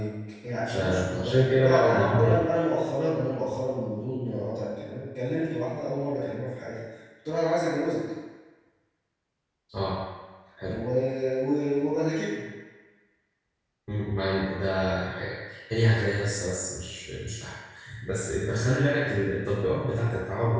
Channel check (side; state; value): both; identical; correlation 1.00